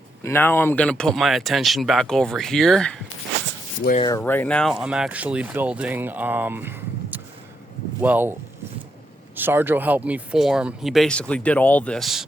now I'm going to put my attention back over here, where right now I'm actually building, Sarjo helped me form. He basically did all this.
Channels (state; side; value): normal; both; correlation 0.80